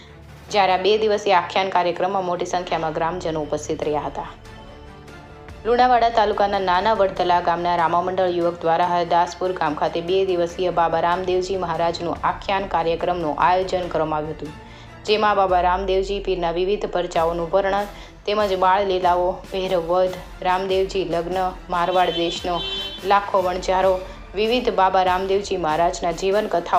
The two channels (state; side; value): identical; both; correlation 1.00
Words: જ્યારે આ 2 દિવસીય આખ્યાન કાર્યક્રમમાં મોટી સંખ્યામાં ગ્રામજનો ઉપસ્થિત રહ્યા હતા। લુણાવાડા તાલુકાના નાના વડતલા ગામના રામામંડળ યુવક દ્વારા હરદાસપુર ગામ ખાતે 2 દિવસીય બાબા રામદેવજી મહારાજનું આખ્યાન કાર્યક્રમનું આયોજન કરવામાં આવ્યું હતું, જેમાં બાબા રામદેવજી પીરના વિવિધ પરચાઓનું વર્ણન તેમજ બાળ લીલાઓ, ભૈરવ વધ, રામદેવજી લગ્ન, મારવાડ દેશનો લાખો વણજારો, વિવિધ બાબા રામદેવજી મહારાજના જીવન